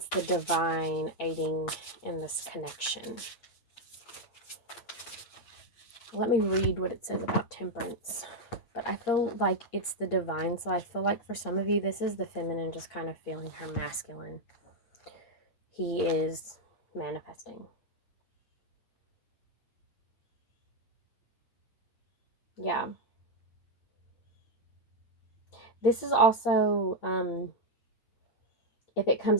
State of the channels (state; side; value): late; right; 8.6 ms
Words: the divine aiding in this connection. Let me read what it says about temperance. But I feel like it's the divine. So I feel like for some of you, this is the feminine just kind of feeling her masculine. He is manifesting. Yeah. This is also, if it comes